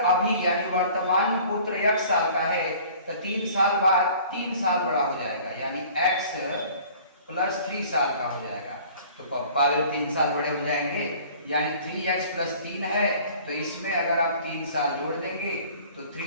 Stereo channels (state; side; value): inverted; both; correlation -0.49